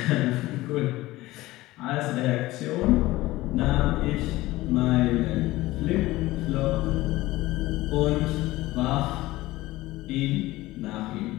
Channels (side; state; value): right; quieter; 18.2 dB